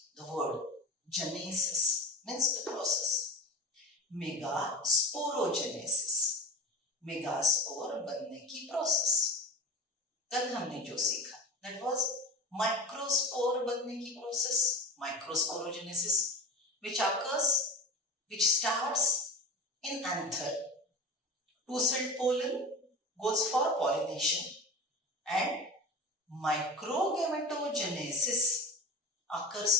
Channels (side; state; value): both; normal; correlation 0.30